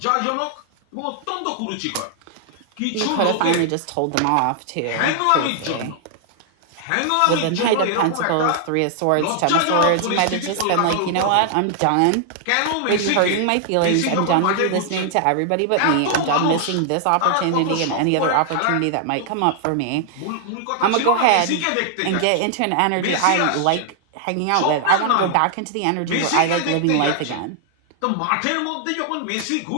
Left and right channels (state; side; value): different; both; correlation -0.01